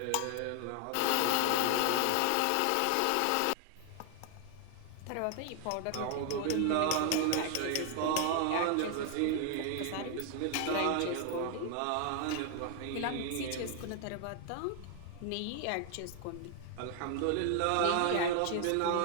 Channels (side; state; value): both; different; correlation 0.00